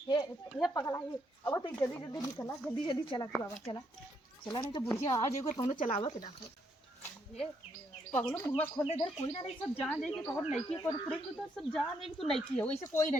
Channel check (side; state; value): both; normal; correlation 0.75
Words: ये पगला ये, अब तो जल्दी जल्दी निकला, जल्दी जल्दी चला तू बाबा, चला चला, नहीं तो बुढ़िया आ जाएगा तो चलावा के देखो। ये पगलो मुँह खोलने दे, कोई ना नहीं, सब जान जाएगी तो और नईकी पर पूरे तो सब जान जाएगी, तू नईकी हो, इसे कोई ना